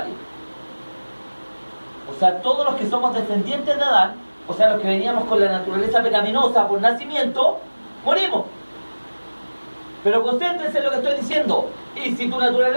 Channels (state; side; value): inverted; both; correlation -1.00